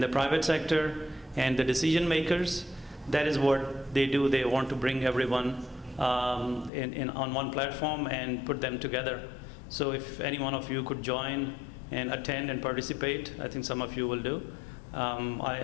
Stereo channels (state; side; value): drops out; right; at 6.7 s